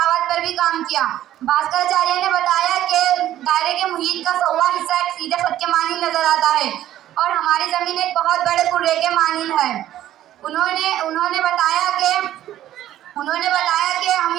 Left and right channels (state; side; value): quieter; left; 12.8 dB